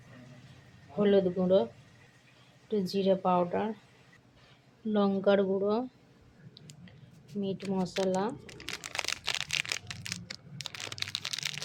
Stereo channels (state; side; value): identical; both; correlation 1.00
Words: হলুদ গুঁড়ো, একটু জিরে পাউডার, লঙ্কার গুঁড়ো, মিট মশলা,